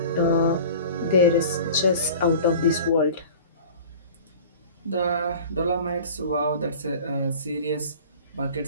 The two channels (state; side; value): inverted; both; correlation -0.41